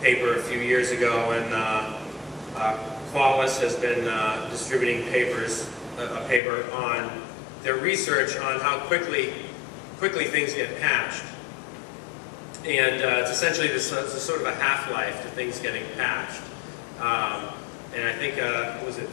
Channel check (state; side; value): drops out; right; at 6.4 s